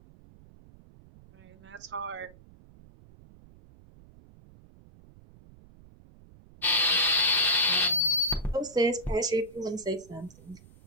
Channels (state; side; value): noise; right; rumble, 23 dB below the sound